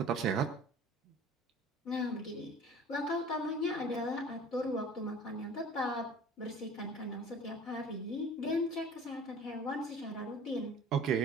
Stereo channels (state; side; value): normal; both; correlation 0.45